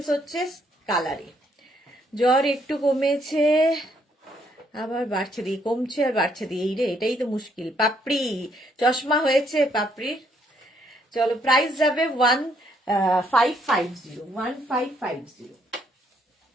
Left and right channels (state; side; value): normal; both; correlation 0.70